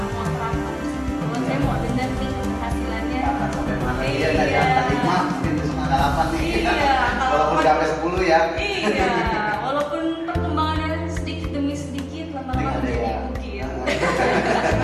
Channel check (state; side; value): identical; both; correlation 1.00